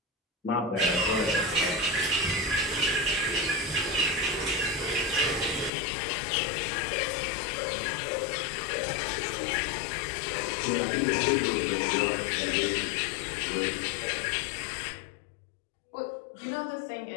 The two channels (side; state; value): right; drops out; at 5.7 s